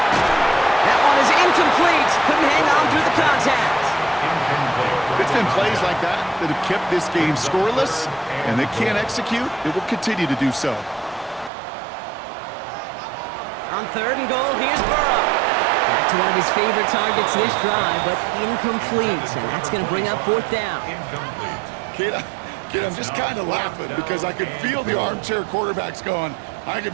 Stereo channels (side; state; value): left; drops out; at 11.5 s